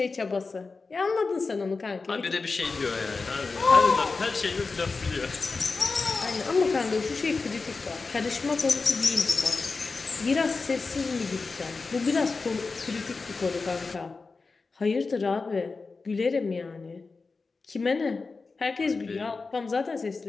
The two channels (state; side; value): quieter; right; 4.2 dB